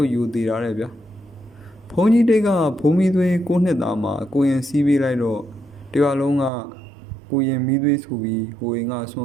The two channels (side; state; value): left; drops out; at 6.5 s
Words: ုပ်ယူသေးတာတဲ့ဗျဘုန်းကြီးတိတ်ကဘုံမီးသွေး9နှစ်သားမှာကိုရင်စီးပေးလိုက်တော့တရွာလုံးကကိုရင်မီးသွေးဆိုပြီးဟိုရင်ကဆွန